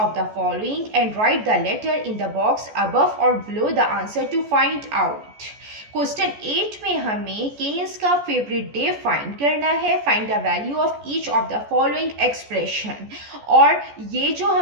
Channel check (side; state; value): left; late; 14 ms